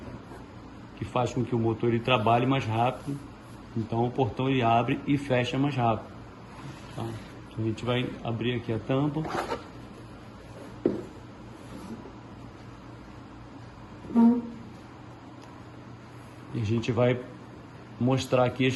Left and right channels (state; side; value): identical; both; correlation 1.00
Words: que faz com que o motor ele trabalhe mais rápido, então o portão ele abre e fecha mais rápido. Tá? Então a gente vai abrir aqui a tampa. E a gente vai mostrar aqui as